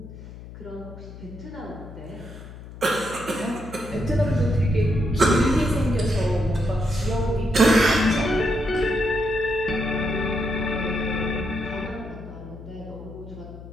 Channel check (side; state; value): left; noise; hum, 15 dB below the sound